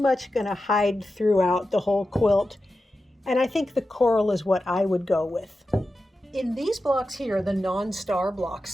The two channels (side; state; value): both; normal; correlation 0.92